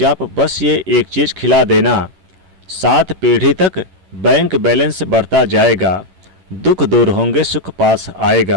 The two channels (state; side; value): late; left; 11 ms